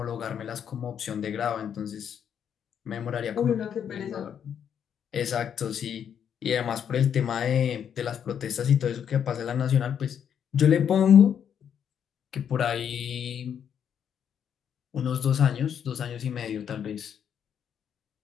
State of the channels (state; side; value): quieter; right; 8.4 dB